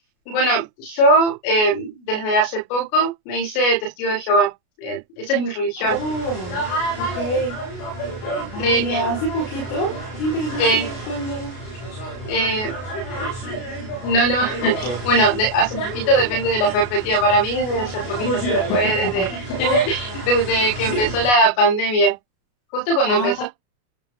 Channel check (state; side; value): late; right; 33 ms